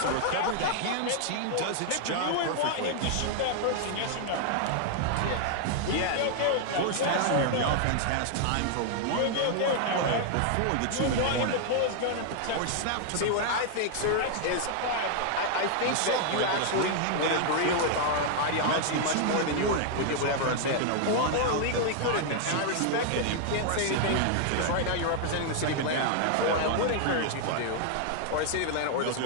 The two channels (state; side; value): different; both; correlation 0.00